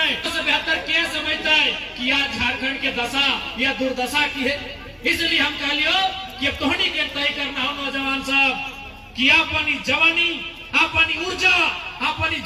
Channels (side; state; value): both; identical; correlation 1.00